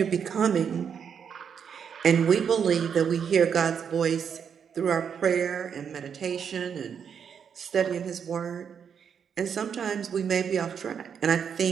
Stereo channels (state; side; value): quieter; left; 7.3 dB